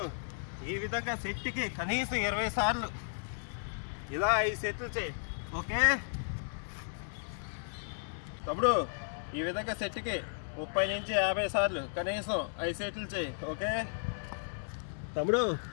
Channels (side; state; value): right; silent; digital silence